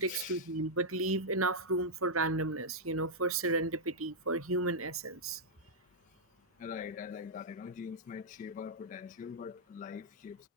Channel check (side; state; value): both; normal; correlation -0.06